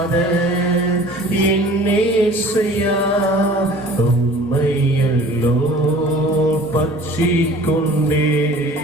என்னேசையா, உம்மையல்லோ பற்றி கொண்டே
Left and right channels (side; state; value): both; normal; correlation 0.47